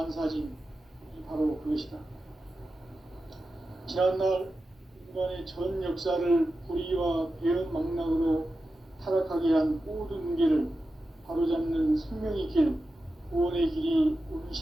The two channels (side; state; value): both; normal; correlation 0.92